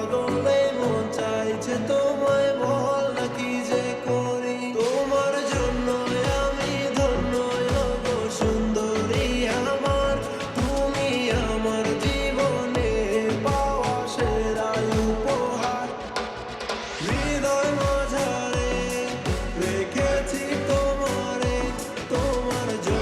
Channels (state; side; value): identical; both; correlation 1.00